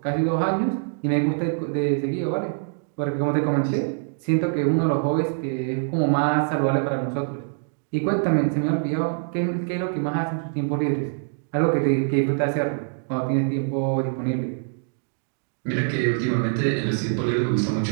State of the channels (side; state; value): left; silent; digital silence